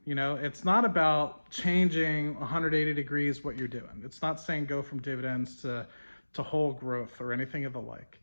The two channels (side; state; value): both; inverted; correlation -1.00